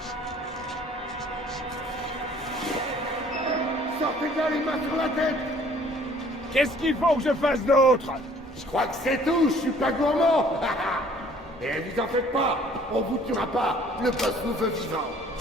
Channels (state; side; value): normal; both; correlation 0.56